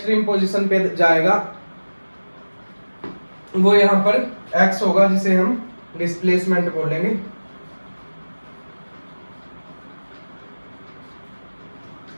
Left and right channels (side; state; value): both; inverted; correlation -1.00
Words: पोजीशन पे जाएगा, वो यहाँ पर x होगा, जिसे हम डिस्प्लेसमेंट बोलेंगे।